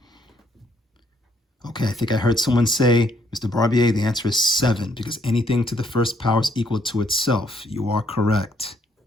Okay, I think I heard someone say, Mr. Barbier, the answer is 7 because anything to the first power is equal to itself. You are correct.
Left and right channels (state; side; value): normal; both; correlation 0.69